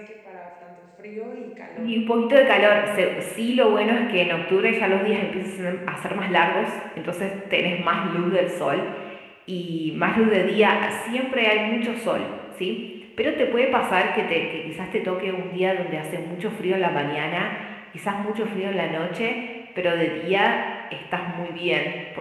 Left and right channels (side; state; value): both; identical; correlation 1.00